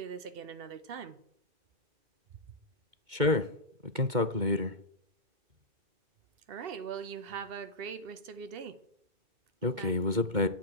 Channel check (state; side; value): late; left; 2.2 ms